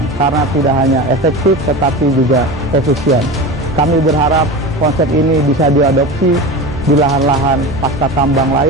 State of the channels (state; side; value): normal; both; correlation 0.28